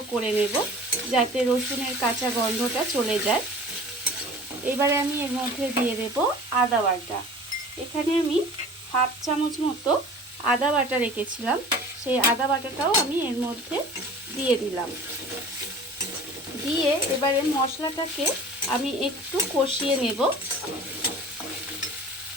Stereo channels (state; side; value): normal; both; correlation 0.43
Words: করে নেব, যাতে রসুনের কাঁচা গন্ধটা চলে যায়। এবারে আমি এর মধ্যে দিয়ে দেব আদা বাটা। এখানে আমি 1/2 চামচ মতো আদা বাটা রেখেছিলাম, সেই আদা বাটাটাও আমি এর মধ্যে দিয়ে দিলাম। দিয়ে এবারে মশলাটাকে আমি একটু কষিয়ে নেব।